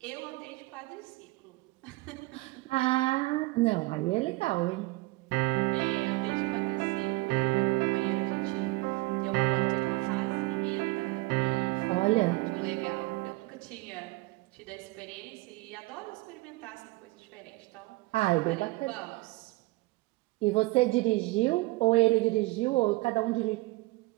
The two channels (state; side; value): quieter; left; 22.0 dB